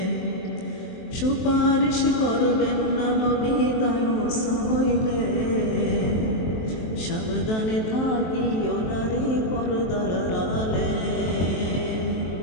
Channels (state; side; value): late; right; 23 ms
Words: সুপারিশ করবেন না নবী দায়ুস হইলে। সাবধানে থাকিও নারী পর্দার আড়ালে,